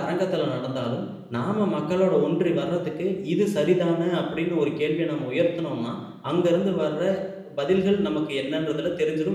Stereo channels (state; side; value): identical; both; correlation 1.00